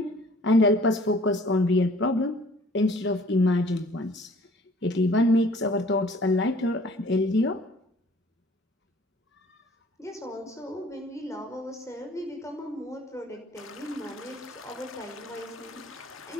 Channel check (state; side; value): normal; both; correlation 0.53